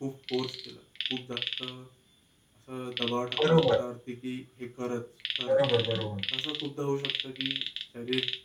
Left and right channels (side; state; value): both; identical; correlation 1.00